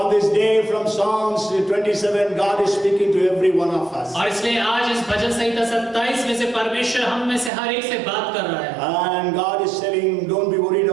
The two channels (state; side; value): drops out; left; at 7.5 s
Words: this day from Psalms 27, God is speaking to every one of us. और इसलिए आज इस भजन संहिता 27 में से परमेश्वर हम में से हर एक से बात कर रहा है। And God is telling, don't be worried